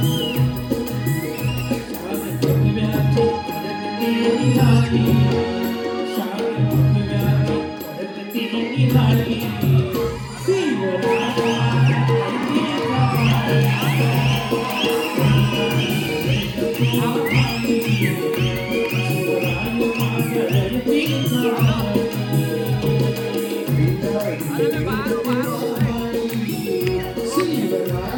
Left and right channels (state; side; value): identical; both; correlation 1.00